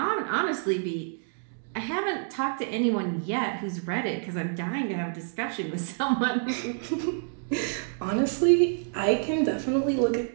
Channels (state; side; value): silent; left; digital silence